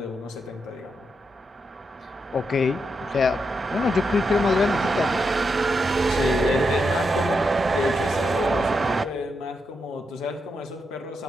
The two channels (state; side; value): normal; both; correlation 0.84